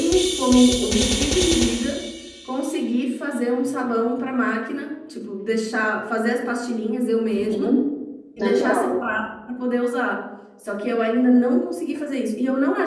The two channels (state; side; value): identical; both; correlation 1.00